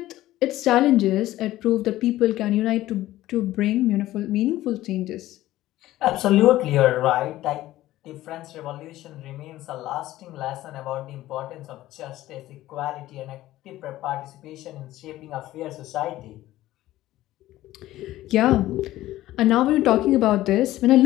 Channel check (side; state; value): right; quieter; 15.4 dB